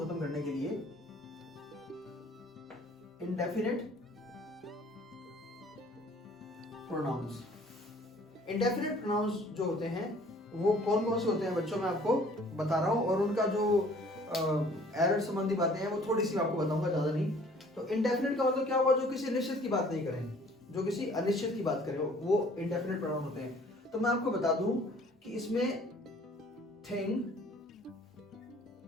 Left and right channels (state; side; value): normal; both; correlation 0.55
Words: खत्म करने के लिए इंडेफिनिट प्रोनाउंस। इंडेफिनिट प्रोनाउंस जो होते हैं वो कौन कौन से होते हैं बच्चों, मैं आपको बता रहा हूं, और उनका जो एरर संबंधी बातें हैं वो थोड़ी सी आपको बताऊंगा, ज्यादा नहीं। तो इंडेफिनिट का मतलब क्या हुआ, जो किसी निश्चित की बात नहीं करें, जो किसी अनिश्चित की बात करें, वो इंडेफिनिट प्रोनाउन होते हैं। तो मैं आपको बता दूं कि इसमें thing,